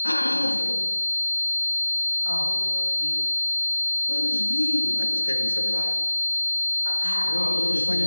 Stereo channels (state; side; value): inverted; both; correlation -1.00